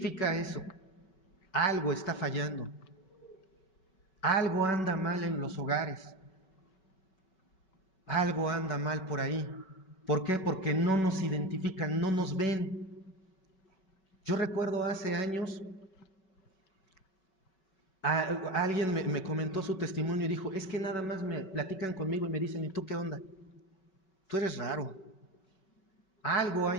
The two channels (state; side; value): late; right; 5.3 ms